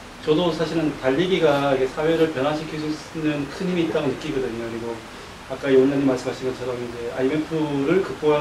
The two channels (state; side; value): identical; both; correlation 1.00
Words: 저도 사실은 달리기가 이게 사회를 변화시킬 수 있는 큰 힘이 있다고 느끼거든요. 그리고 아까 이 원장님 말씀하신 것처럼 이제 IMF를